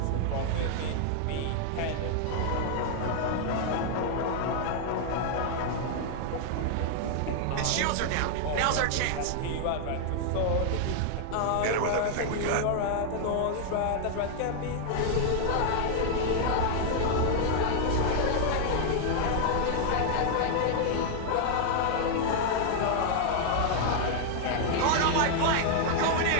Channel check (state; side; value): different; both; correlation -0.01